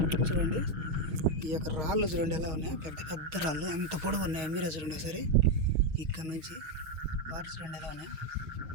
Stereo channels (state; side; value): late; left; 6.4 ms